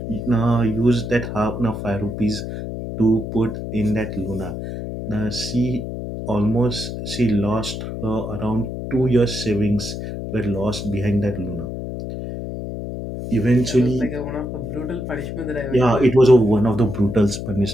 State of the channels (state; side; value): noise; left; hum, 6 dB below the sound